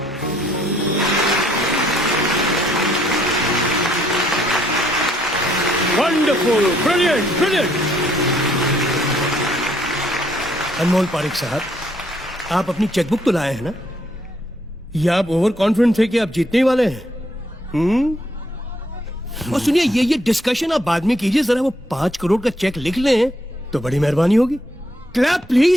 Wonderful, brilliant, brilliant. Anmol Pareek साहब, आप अपनी चेकबुक तो लाए हैं ना? या आप ओवर कॉन्फिडेंट थे कि आप जीतने ही वाले हैं? और सुनिए, ये डिस्कशन आप बाद में कीजिए, जरा वो 5 करोड़ का चेक लिख लें तो बड़ी मेहरबानी होगी। Clap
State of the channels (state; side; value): normal; both; correlation 0.70